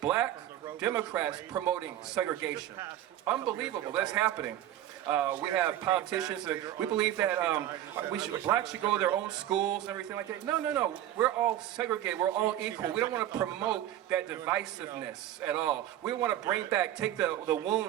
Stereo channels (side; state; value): left; quieter; 12.4 dB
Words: Democrats promoting segregation. Unbelievable, that's happening. We have politicians that we believe that blacks should go to their own schools and everything like that. No, no, no. We're all segregated. We're all equal. We don't want to promote that divisiveness at all. We want to bring back, take the